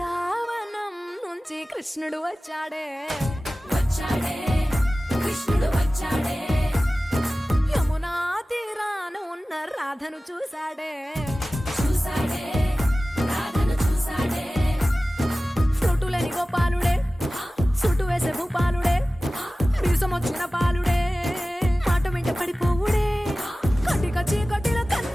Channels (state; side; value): normal; both; correlation 0.96